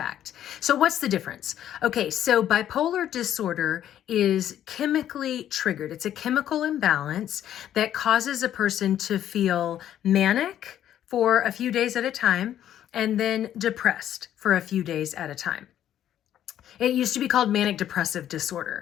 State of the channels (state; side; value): quieter; right; 11.1 dB